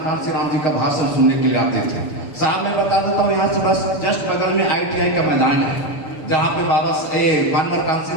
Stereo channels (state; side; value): late; right; 6.8 ms